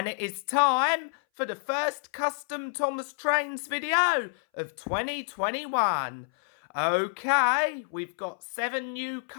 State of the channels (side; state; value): right; silent; 59 dB below the other